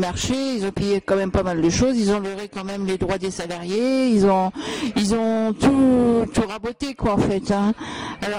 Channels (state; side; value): identical; both; correlation 1.00